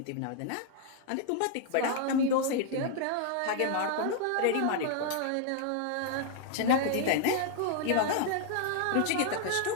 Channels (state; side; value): different; both; correlation 0.00